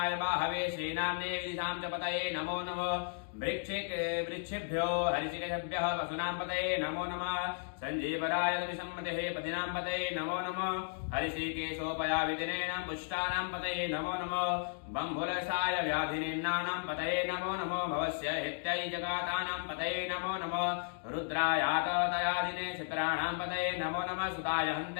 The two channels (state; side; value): silent; right; digital silence